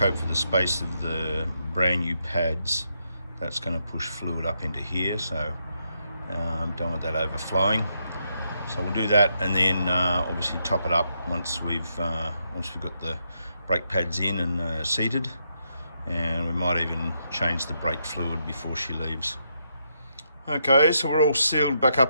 for the space of the brand new pads, that's going to push fluid up into here. So don't want that overflowing. So we'll do that, and then obviously top it up once we've got the brake pads in and seated, and we might even change the brake fluid before she leaves. Okay, so we're all sealed back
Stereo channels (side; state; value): both; inverted; correlation -0.80